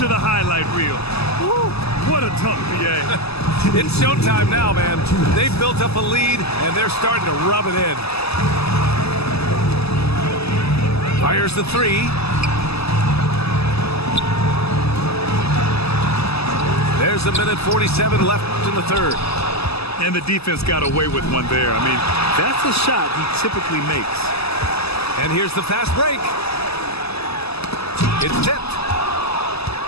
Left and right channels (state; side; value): late; right; 0.79 ms